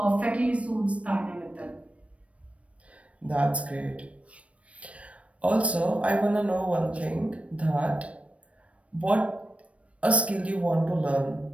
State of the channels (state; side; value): late; left; 0.063 ms